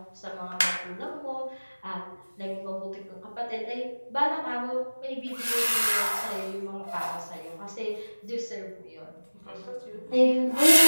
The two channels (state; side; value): inverted; both; correlation -1.00